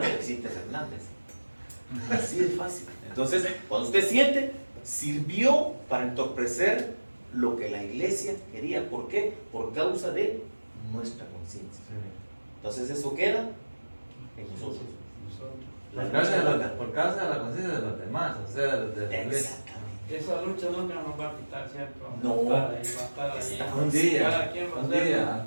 de Vicente Fernández. Así de fácil. Entonces, cuando usted siente, sirvió para entorpecer lo que la iglesia quería. ¿Por qué? Por causa de nuestra conciencia. Sí. Entonces, eso queda en nosotros. Por causa de la conciencia de los demás, o sea, de la iglesia. Exactamente. Esa lucha nunca nos va a quitar, ¿cierto? No. Va a estar ahí. Está Un día, Cada quien va a un hacer- día,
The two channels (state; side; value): inverted; both; correlation -1.00